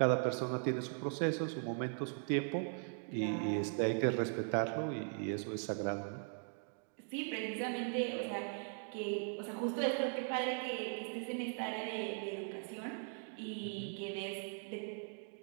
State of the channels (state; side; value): silent; left; 51 dB below the other